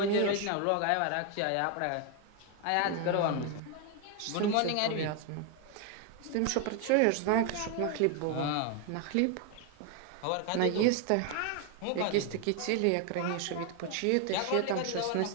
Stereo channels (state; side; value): different; both; correlation 0.01